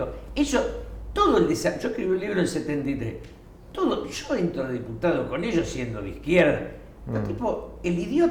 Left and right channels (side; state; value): both; identical; correlation 1.00